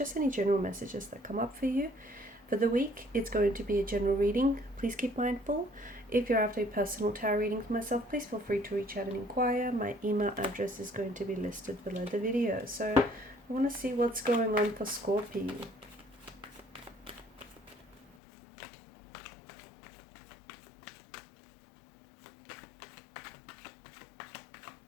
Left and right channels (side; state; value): right; drops out; at 18.1 s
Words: any general messages that come up for you. For the week, it's going to be a general reading. Please keep mindful. If you're after a personal tarot reading for myself, please feel free to reach out and inquire. My email address is going to be listed below the video. So I want to see what's going on for Scorpio.